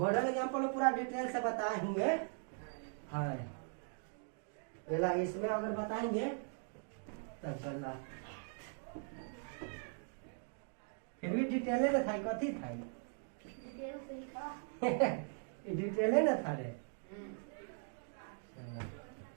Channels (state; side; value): silent; left; 51 dB below the other